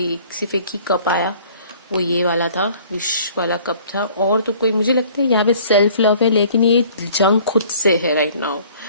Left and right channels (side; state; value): both; inverted; correlation -0.53